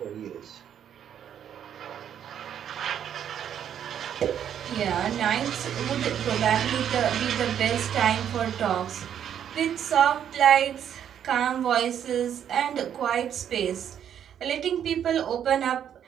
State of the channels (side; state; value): left; quieter; 9.3 dB